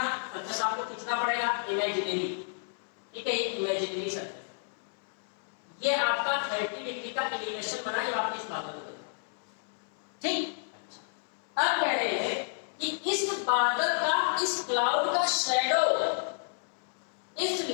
सरफेस आपको खींचना पड़ेगा इमेजिनरी, ठीक है, ये इमेजिनरी सरफेस, ये आपका 30 डिग्री का एलिवेशन बना जब आपने इस बादल को देखा, ठीक। अच्छा, अब कह रहे हैं कि इस बादल का, इस क्लाउड का शैडो इस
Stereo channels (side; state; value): right; silent; 57 dB below the other